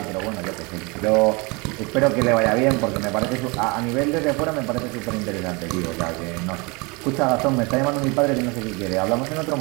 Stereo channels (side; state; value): left; quieter; 28.4 dB